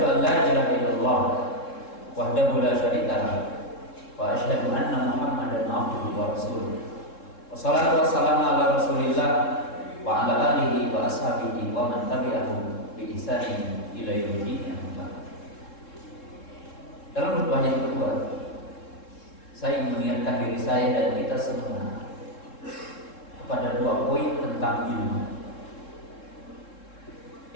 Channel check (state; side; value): late; right; 3.7 ms